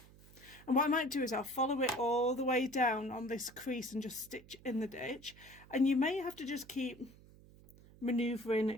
And what I might do is I'll follow it all the way down on this crease and just stitch in the ditch. And you may have to just keep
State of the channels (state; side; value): noise; right; hum, 22 dB below the sound